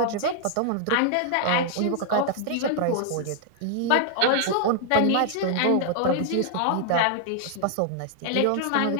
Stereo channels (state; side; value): different; both; correlation 0.00